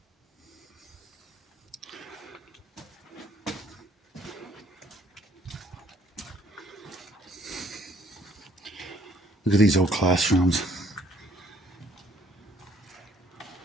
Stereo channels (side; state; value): both; normal; correlation 0.62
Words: Look at these old classrooms.